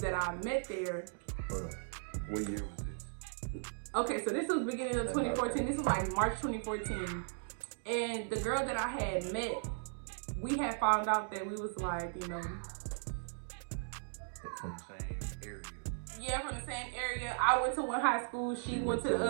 that I met there. What year was this? Okay, so this was beginning of 2014. This was like March 2014. And the girl that I had met, we had found out that we was like, you know, From the same area. yeah, from the same area. I went to one high school, she went to the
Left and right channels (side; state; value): left; silent; digital silence